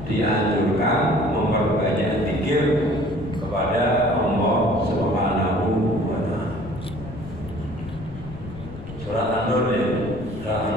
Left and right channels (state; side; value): noise; left; rumble, 13 dB below the sound